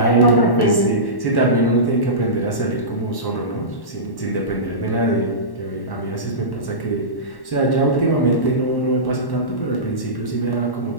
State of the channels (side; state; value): right; late; 1.1 ms